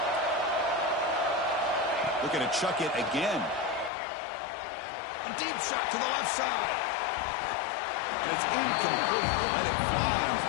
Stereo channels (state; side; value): drops out; right; at 3.9 s